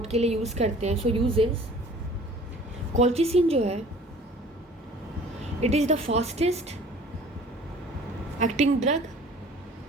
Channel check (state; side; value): normal; both; correlation 0.49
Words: के लिए use करते हैं। So uses, colchicine जो है it is the fastest acting drug